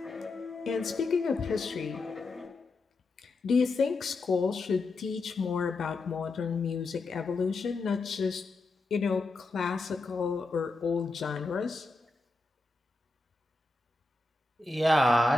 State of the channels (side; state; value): right; quieter; 3.2 dB